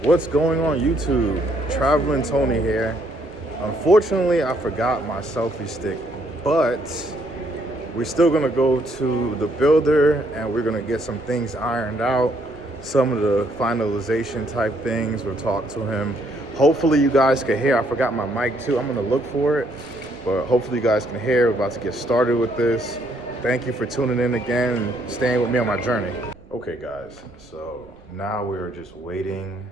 What's going on YouTube? Traveling Tony here. Unfortunately, I forgot my selfie stick, but we're still gonna go to the builder and we're gonna get some things ironed out, some of the finalization type things. We'll talk to him. Hopefully you guys can hear. I forgot my mic too. I'm gonna look for it, but hopefully you guys can hear. We're about to get started with this. Thank you for tuning in again and staying with me on my journey. Okay guys, so now we're just waiting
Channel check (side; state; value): right; noise; rumble, 27 dB below the sound